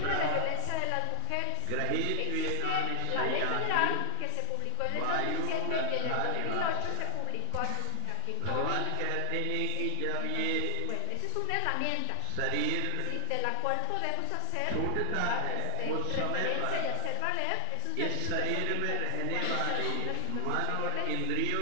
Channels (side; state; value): both; different; correlation 0.00